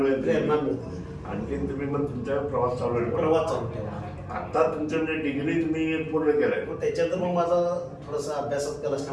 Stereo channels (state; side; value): identical; both; correlation 1.00